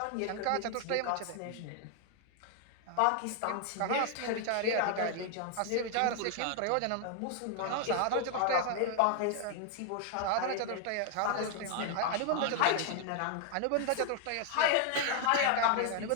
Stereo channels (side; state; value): both; different; correlation 0.00